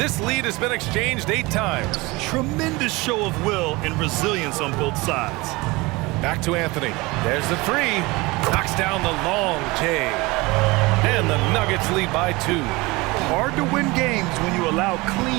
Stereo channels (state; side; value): quieter; left; 23.1 dB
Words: lead has been exchanged 8 times. Tremendous show of will and resilience on both sides. Back to Anthony. There's the 3. Knocks down the long J. And the Nuggets lead by 2. Hard to win games when you allow